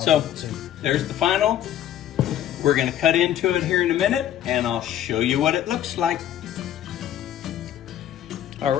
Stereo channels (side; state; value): right; quieter; 11.3 dB